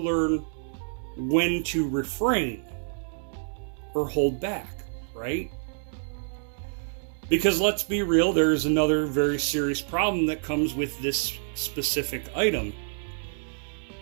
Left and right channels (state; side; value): silent; left; 60 dB below the other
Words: learn when to refrain or hold back, right? Because let's be real, there's another very serious problem that comes with this specific item.